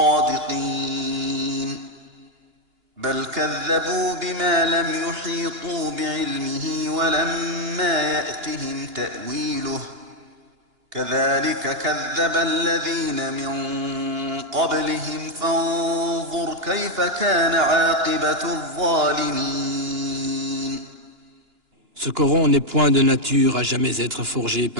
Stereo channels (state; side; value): late; left; 2.9 ms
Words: بل كذبوا بما لم يحيطوا بعلمه ولما يأتهم تأويله كذلك كذب الذين من قبلهم فانظر كيف كان عاقبة الظالمين. Ce Coran n'est point de nature à jamais être forgé